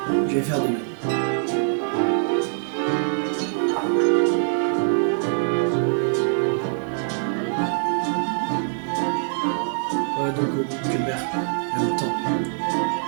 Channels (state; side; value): silent; left; 63 dB below the other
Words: je vais faire de même. Ouais, donc que mère, en même temps,